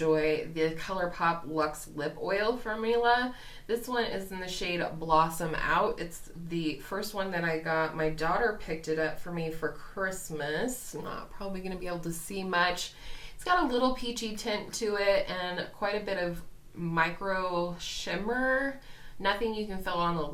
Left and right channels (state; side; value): identical; both; correlation 1.00